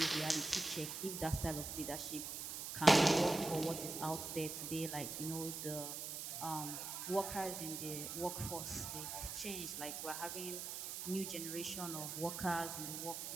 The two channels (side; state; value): right; noise; hiss, 5 dB below the sound